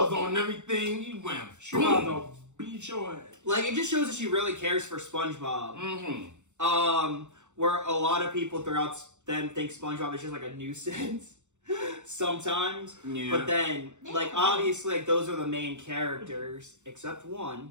on and everything. He went. She about to beat your ass. It just shows that she really cares for SpongeBob. Mm-hmm. Where a lot of people throughout them think SpongeBob is just a nuisance. Sometimes, Yeah. but then, obviously, those are the main characters, except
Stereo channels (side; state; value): left; late; 0.84 ms